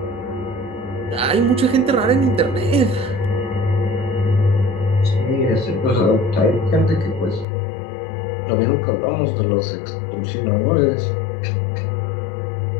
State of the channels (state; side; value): drops out; right; at 7.5 s